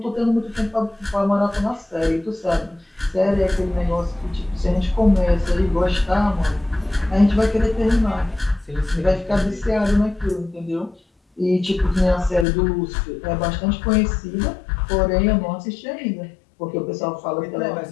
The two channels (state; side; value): drops out; right; at 12.5 s